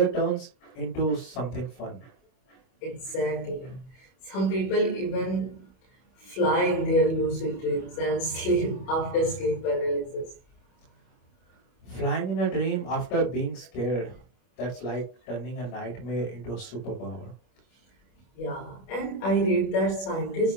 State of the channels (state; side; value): late; right; 31 ms